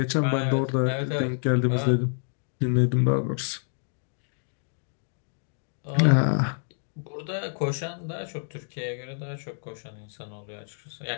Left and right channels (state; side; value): silent; right; digital silence